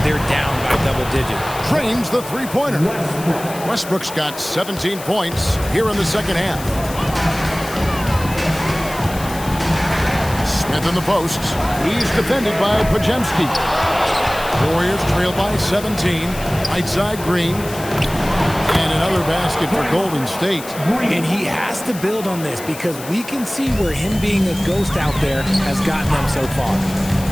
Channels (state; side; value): noise; left; hiss, 14 dB below the sound